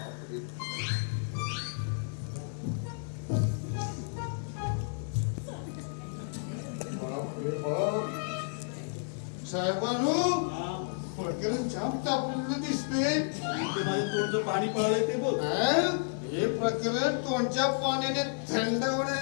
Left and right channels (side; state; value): right; silent; digital silence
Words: साहेबांनो प्रकरण जाम तापलेलं दिसतंय. ते माझ्या तोंडचं पाणी पळालंय ते बोल. हे प्रकरण तोंडच्या पाण्याने थंड